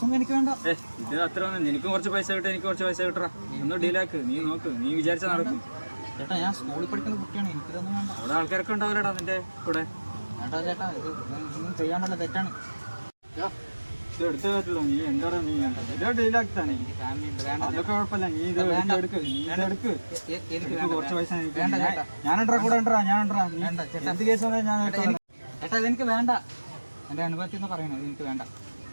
എനിക്ക് വേണ്ട. ഇത് അത്ര ഒന്നും, എനിക്കും കുറച്ച് പൈസ കിട്ടും, എനിക്ക് കുറച്ച് പൈസ കിട്ടറാ. ഒന്ന് ഡീലാക്ക്, നീ നോക്ക്, നീ വിചാരിച്ചാൽ നടക്കും. ചേട്ടാ ഞാൻ സ്കൂളിൽ പഠിക്കുന്ന കുട്ടിയാണ്, എനിക്കിതൊന്നും വേണ്ട. അവിടെ ആൾക്കാരൊക്കെ ഉണ്ടാവില്ലടാ നിന്റെ കൂടെ. ചേട്ടാ ചേട്ടാ ഇതൊന്നും ചെയ്യാൻ പറ്റില്ല, തെറ്റാണ്. ഇത് എടുത്തേ പറ്റുള്ളൂ. നീ എന്താണ് നീ ഇതോ ഡീലാക്കി തന്നെ. അതൊക്കെ കുഴപ്പമില്ല, നീ ഇത് എടുക്ക്, നീ ഇതെടുക്ക്. എനിക്ക് കുറച്ച് പൈസ ഞാനുണ്ടാ കൂടെ ഉണ്ടാ, ഞാനുണ്ടാ. എന്ത് കേസ് വന്നാൽ ഞാൻ ചേട്ടാ ഇതെനിക്ക് വേണ്ട. എൻ്റെ അനുഭവത്തിൽ നിന്ന് പറയണേ, ഇതെനിക്ക് വേണ്ട.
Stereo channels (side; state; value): both; inverted; correlation -1.00